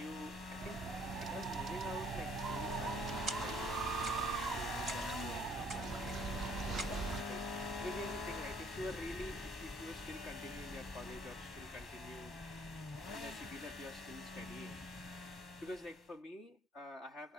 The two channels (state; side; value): normal; both; correlation 0.61